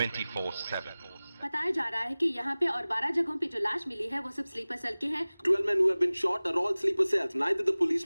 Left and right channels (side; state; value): both; inverted; correlation -0.99